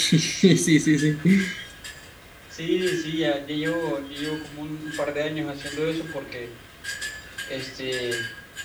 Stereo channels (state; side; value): identical; both; correlation 1.00